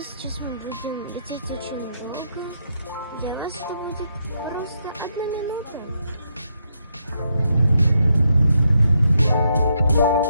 сейчас мы будем лететь очень долго. Для вас это будет просто 1 минута.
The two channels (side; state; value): both; inverted; correlation -0.79